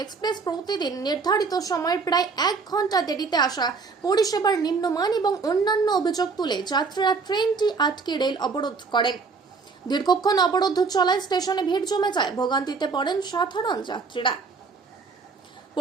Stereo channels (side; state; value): left; quieter; 4.8 dB